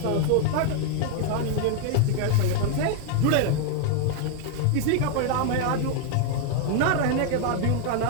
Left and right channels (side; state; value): both; different; correlation 0.00